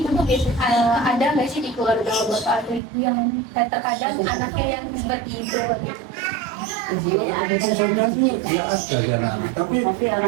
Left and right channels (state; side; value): drops out; left; at 2.8 s